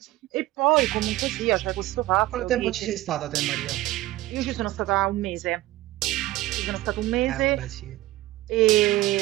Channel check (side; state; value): left; quieter; 17.1 dB